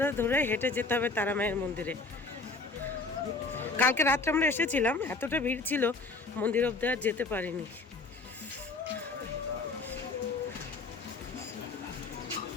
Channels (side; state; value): right; quieter; 3.6 dB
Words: ধরে হেঁটে যেতে হবে তারা মায়ের মন্দিরে। কালকে রাত্রে আমরা এসেছিলাম, এতটা ভিড় ছিল মন্দির অবধি আর যেতে পারিনি।